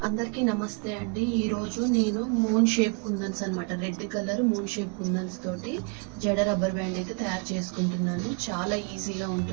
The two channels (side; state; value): left; quieter; 35.0 dB